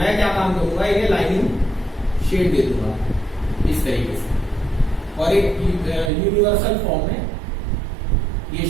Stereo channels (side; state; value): left; drops out; at 6.1 s